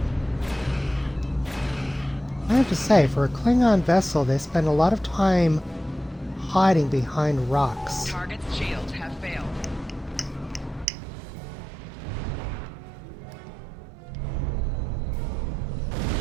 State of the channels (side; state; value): left; drops out; at 10.9 s